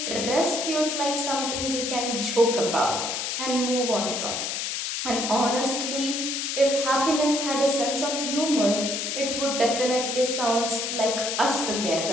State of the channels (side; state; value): left; noise; hiss, 2 dB below the sound